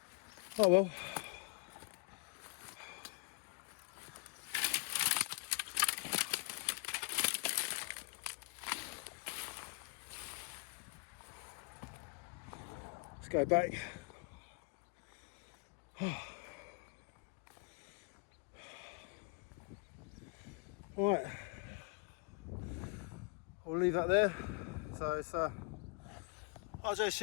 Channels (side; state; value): right; quieter; 35.8 dB